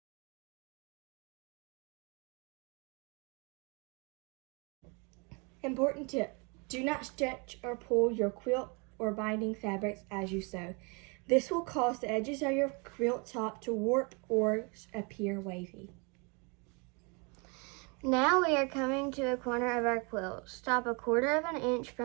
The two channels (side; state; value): left; quieter; 32.1 dB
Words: Important tip: do not stretch or pull your quilt or binding fabrics as you sew. This will cause the edges of your quilt top to warp or appear wavy. Now we are coming to a corner of our quilt. Stop a 1/4 inch